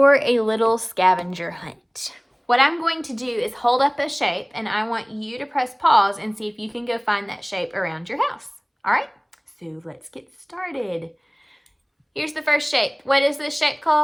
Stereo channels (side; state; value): both; identical; correlation 1.00